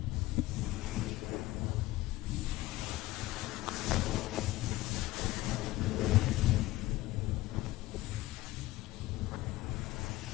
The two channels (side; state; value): right; quieter; 17.5 dB